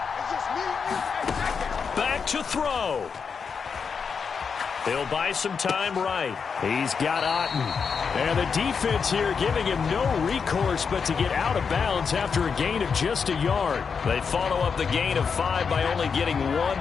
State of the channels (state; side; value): quieter; right; 5.9 dB